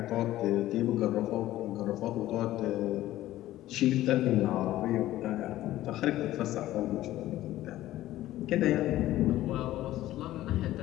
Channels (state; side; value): quieter; right; 14.8 dB